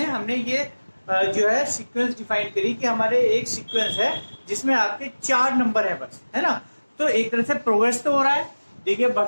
हमने ये जो है सीक्वेंस डिफाइन करी कि हमारे एक सीक्वेंस है जिसमें आपके 4 नंबर है बस, है ना। तो एक तरह से प्रोग्रेस तो हो रहा है, देखिए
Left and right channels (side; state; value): both; inverted; correlation -1.00